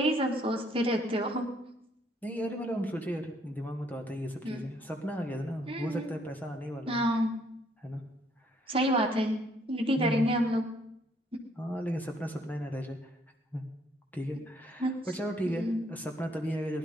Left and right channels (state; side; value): normal; both; correlation 0.67